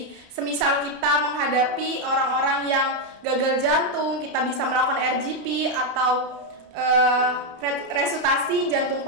Semisal kita menghadapi orang-orang yang gagal jantung, kita bisa melakukan RGP atau resusitasi jantung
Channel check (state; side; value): late; left; 30 ms